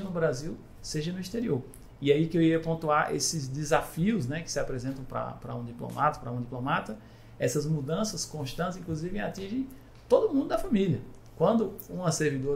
no Brasil, seja no exterior. E aí que eu ia pontuar esses desafios, né, que se apresentam para um diplomata, essas mudanças constantes, inclusive, atingem todo mundo da família. Quando uma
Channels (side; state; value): both; identical; correlation 1.00